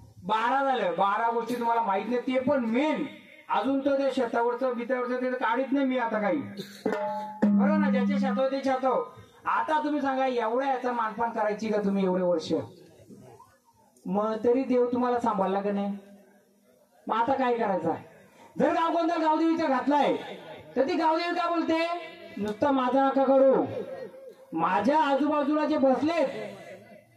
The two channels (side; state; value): both; identical; correlation 1.00